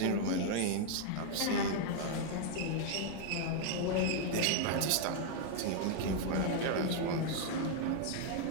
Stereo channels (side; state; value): both; different; correlation 0.00